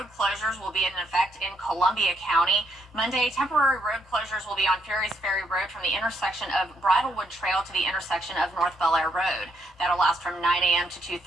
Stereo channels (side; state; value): both; normal; correlation 0.74